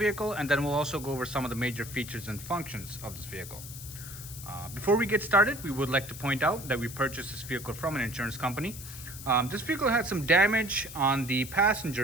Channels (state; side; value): noise; left; hiss, 12 dB below the sound